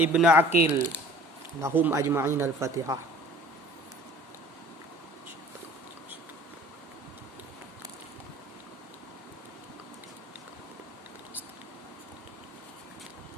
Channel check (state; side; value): normal; both; correlation 0.49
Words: Aqil lahum ajma'in al-Fatihah.